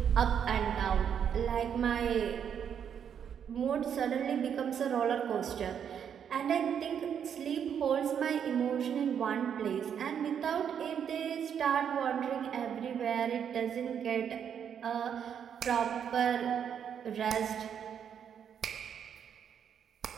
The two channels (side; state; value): left; quieter; 8.2 dB